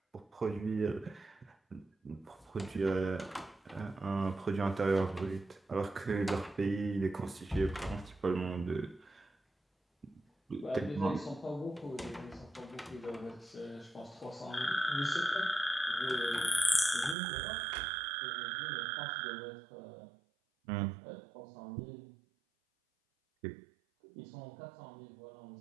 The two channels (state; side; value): drops out; left; at 17.2 s